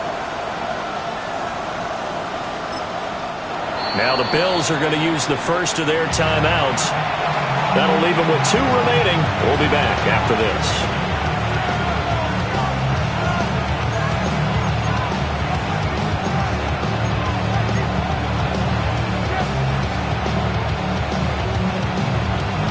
Now the Bills are going to use the first of their timeouts. That'll leave them with 2 remaining. We'll be back after this.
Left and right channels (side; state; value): both; identical; correlation 1.00